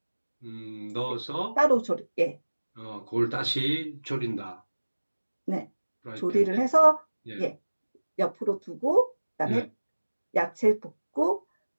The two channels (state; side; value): inverted; both; correlation -1.00